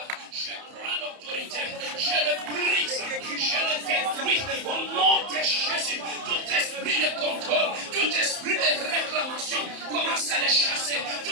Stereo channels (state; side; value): late; left; 31 ms